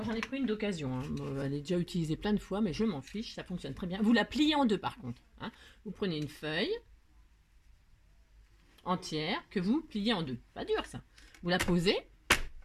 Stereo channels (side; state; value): both; identical; correlation 1.00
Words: j'en ai pris une d'occasion, hein. Elle est déjà utilisée plein de fois, mais je m'en fiche, ça fonctionne très bien. Vous la pliez en deux par contre. Hein. Vous prenez une feuille entière que vous pliez en deux. Pas dur ça. Vous la posez